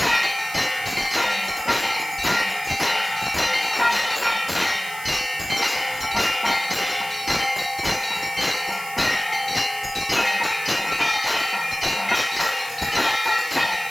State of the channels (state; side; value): noise; right; hiss, 14 dB below the sound